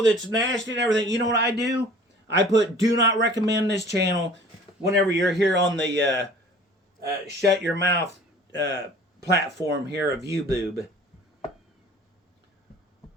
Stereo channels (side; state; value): both; normal; correlation 0.47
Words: that's nasty and everything. You know what I do? I put do not recommend this channel whenever you're here on the shut your mouth platform here of YouTube.